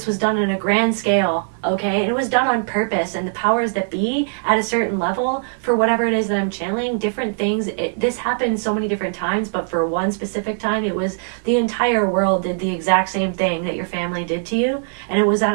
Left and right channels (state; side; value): silent; left; digital silence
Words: was done on a grand scale, okay? And it was done on purpose. And the powers that be at a certain level, for whatever it is that I'm channeling, different things, this happened so many different times, but for one specific time, it was the entire world did the exact same thing that your family did to you. And it was at